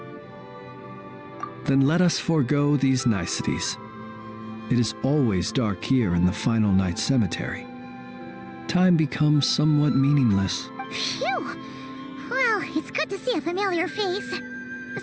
Then let us forego these niceties. It is always dark here in the final night cemetery. Time becomes somewhat meaningless. Phew! Well, it's good to see a familiar face.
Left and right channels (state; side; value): identical; both; correlation 1.00